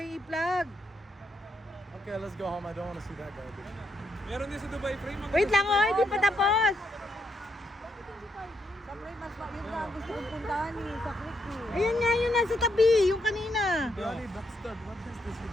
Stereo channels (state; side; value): normal; both; correlation 0.78